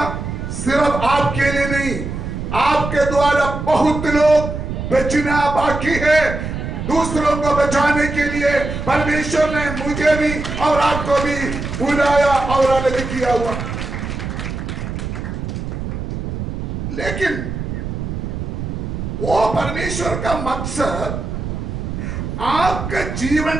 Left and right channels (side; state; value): right; noise; rumble, 5 dB below the sound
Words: सिर्फ आपके लिए नहीं, आपके द्वारा बहुत लोग बचना बाकी है। दूसरों को बचाने के लिए परमेश्वर ने मुझे भी और आपको भी बुलाया और अलग किया हुआ। लेकिन वो परमेश्वर का मकसद आपका जीवन